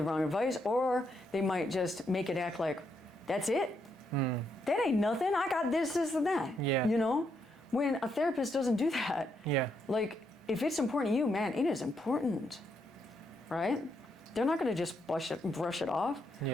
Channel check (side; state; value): both; normal; correlation 0.78